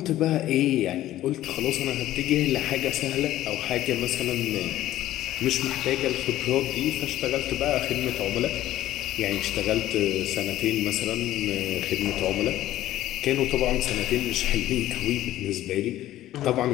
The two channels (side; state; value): right; quieter; 14.1 dB